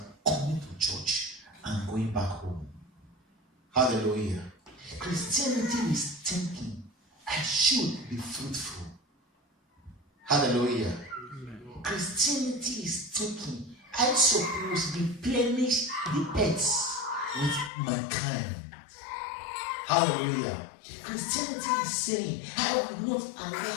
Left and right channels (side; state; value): right; drops out; at 17.7 s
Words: coming to church and going back home. Hallelujah. Christianity is thinking, I should be fruitful. Hallelujah. Amen. Christianity is thinking, I suppose replenish the earth with mankind. Hallelujah. Christianity is saying, I will not